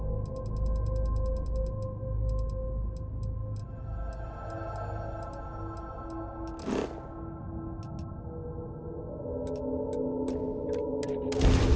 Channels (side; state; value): both; identical; correlation 1.00